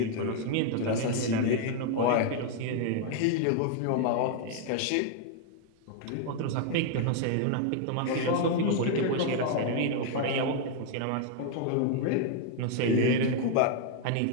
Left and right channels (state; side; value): different; both; correlation 0.00